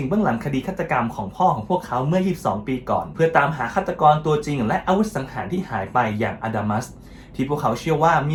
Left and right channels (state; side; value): identical; both; correlation 1.00